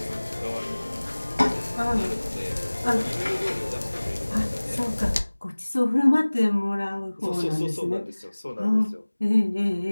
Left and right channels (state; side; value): inverted; both; correlation -1.00